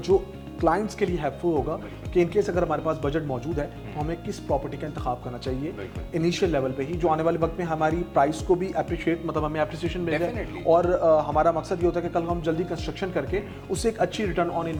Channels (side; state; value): both; identical; correlation 1.00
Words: क्लाइंट्स के लिए हेल्पफुल होगा कि इनकेस अगर हमारे पास बजट मौजूद है तो हमें किस प्रॉपर्टी का इंतखाब करना चाहिए इनिशियल लेवल पे ही, जो आने वाले वक्त में हमारी प्राइस को भी अप्रिशिएट, मतलब हमें अप्रिसिएशन मिल जाए। और हमारा मकसद ये होता है कि कल हम जल्दी कंस्ट्रक्शन करके उससे एक अच्छी रिटर्न ऑन